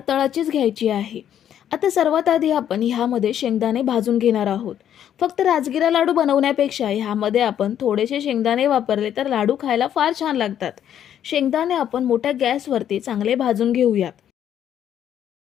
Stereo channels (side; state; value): right; quieter; 10.0 dB